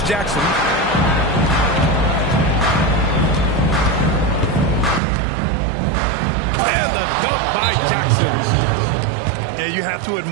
Jackson. And the dunk by Jackson. Yeah, you have to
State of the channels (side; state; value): left; drops out; at 5.0 s